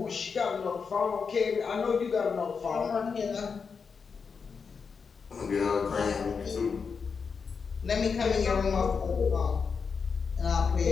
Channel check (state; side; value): quieter; right; 5.6 dB